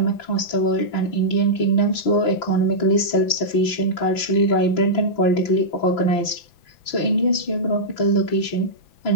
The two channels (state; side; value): late; right; 5.9 ms